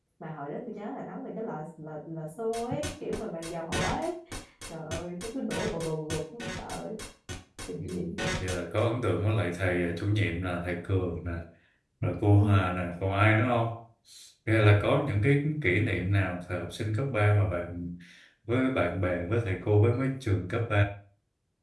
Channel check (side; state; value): both; identical; correlation 1.00